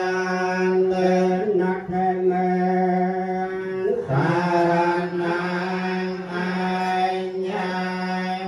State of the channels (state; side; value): identical; both; correlation 1.00